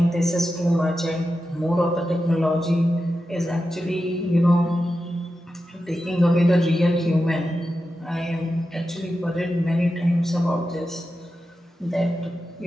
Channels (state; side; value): normal; both; correlation 0.91